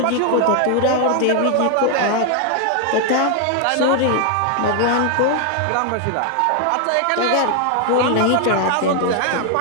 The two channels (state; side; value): different; both; correlation 0.00